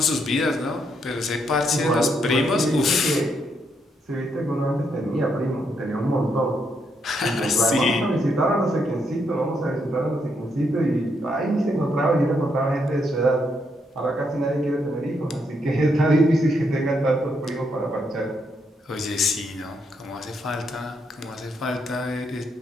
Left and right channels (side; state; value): both; normal; correlation 0.77